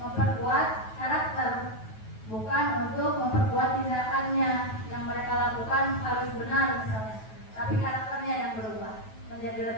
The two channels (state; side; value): late; right; 9.2 ms